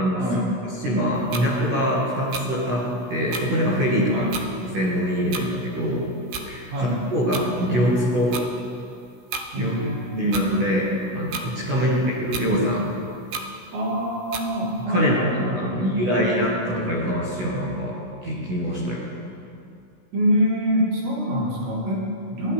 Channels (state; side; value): late; left; 16 ms